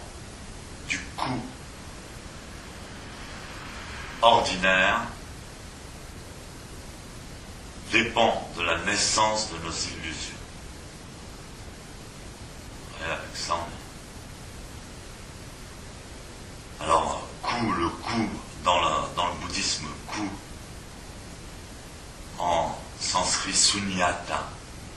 du coup ordinaire dépend de la naissance de nos illusions. Et avec ça, alors, le coup, dans le bouddhisme, coup, en sanskrit sunyata,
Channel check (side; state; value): both; identical; correlation 1.00